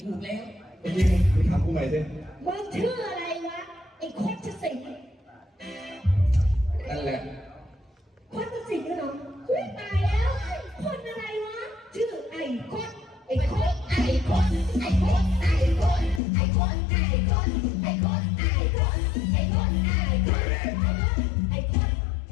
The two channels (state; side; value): drops out; right; at 16.2 s